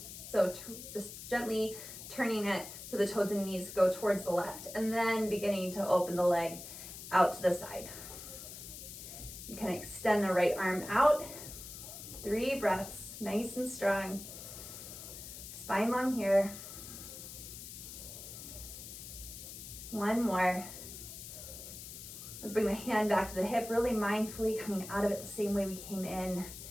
So just gently turning it so the toes and knees go towards the left, and then beginning to open the leg out to the side. You can extend the right arm out. 3 breaths, nice and strong. Spine long here. One more. Let's bring the hand back to the hip, really mindfully coming out of it the same way we came in.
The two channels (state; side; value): noise; left; hiss, 11 dB below the sound